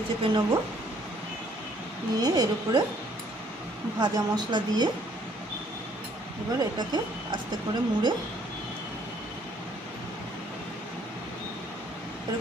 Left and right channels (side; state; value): both; normal; correlation 0.63